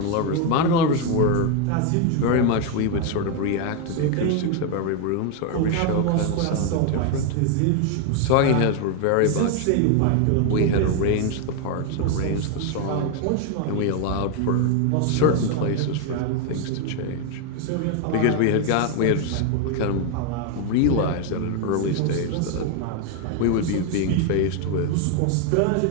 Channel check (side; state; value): both; different; correlation 0.01